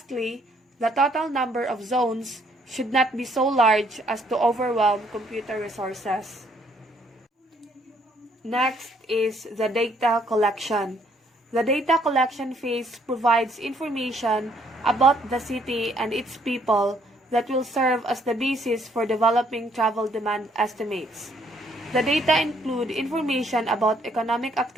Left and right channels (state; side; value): normal; both; correlation 0.67